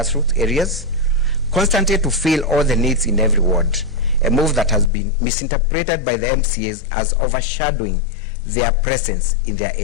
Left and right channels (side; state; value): right; drops out; at 4.9 s